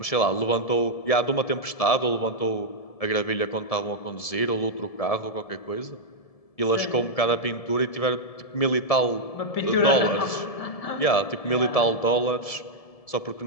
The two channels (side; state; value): right; late; 1.7 ms